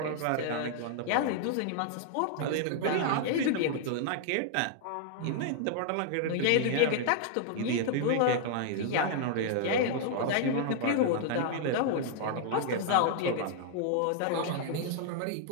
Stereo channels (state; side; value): different; both; correlation -0.01